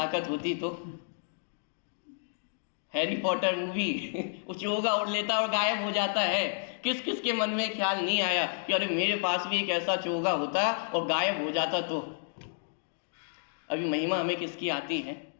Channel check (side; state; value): right; silent; digital silence